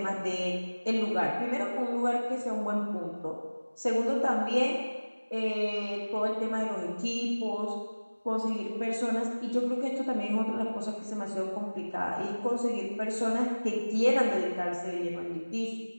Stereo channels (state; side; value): inverted; both; correlation -1.00